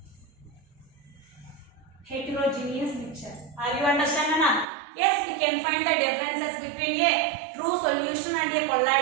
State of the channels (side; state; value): left; drops out; at 4.7 s